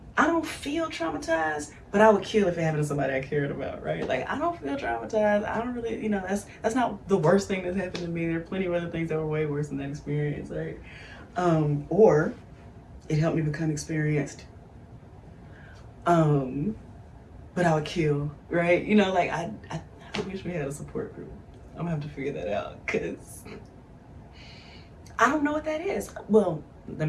I don't feel traumatized, but I would kill if it happened to somebody I cared about, right? Like, I don't feel traumatized. I don't really, you know, that's not the worst thing that's happened to me. There are plenty of other things that were way worse than that experience, right? Or it helped me become experienced. But I would kill, right? You know, like, I wish we had a support group. I'm gonna have to figure that out because I don't know what that is. Well, let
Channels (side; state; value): both; identical; correlation 1.00